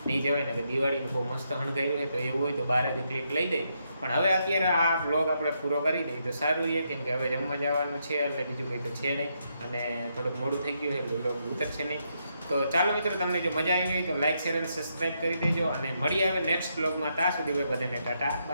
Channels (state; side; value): inverted; both; correlation -0.79